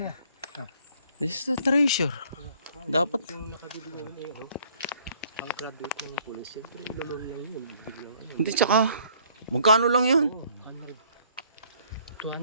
This is the treasure. Dapat. Yung nakabili namin eh, ano, ang graduate ng police, siyempre ilolong lang yun. Biglang ano. Hindi, tsaka, magkano lang yun? Oo, 100.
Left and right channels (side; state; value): both; inverted; correlation -0.60